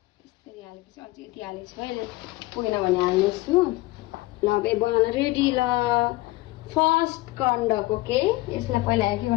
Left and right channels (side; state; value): right; quieter; 19.9 dB